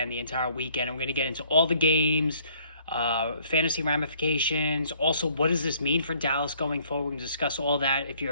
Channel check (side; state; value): both; inverted; correlation -0.62